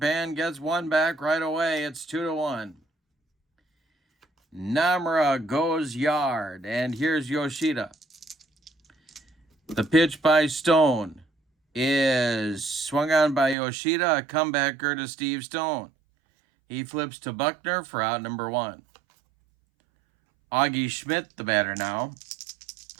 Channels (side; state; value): left; drops out; at 13.6 s